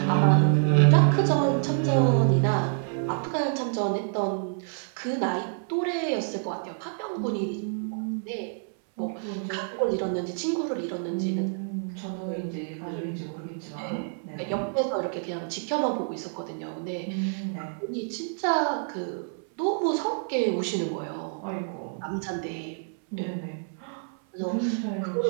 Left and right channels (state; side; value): silent; left; 60 dB below the other